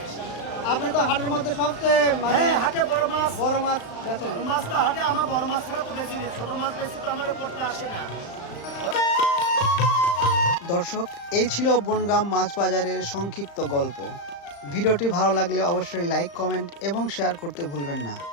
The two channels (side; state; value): right; late; 35 ms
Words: আপনি তো হাটের মধ্যে সবচেয়ে মানে হ্যাঁ, হাটে বড় মাছ বেচেন। বড় মাছ তো হাটে আমার বড় মাছ ছাড়া তো বেশি নেই, ছোট মাছ বেশি তো আমার করতে আসে না। দর্শক, এই ছিল বনগ্রাম মাছ বাজারের সংক্ষিপ্ত গল্প। ভিডিওটি ভালো লাগলে অবশ্যই লাইক, কমেন্ট এবং শেয়ার করতে ভুলবেন না।